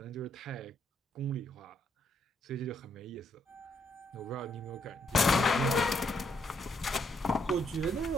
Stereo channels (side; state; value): both; normal; correlation 0.73